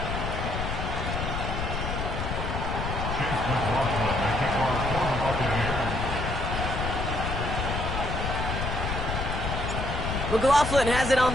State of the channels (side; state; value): left; noise; rumble, 3 dB below the sound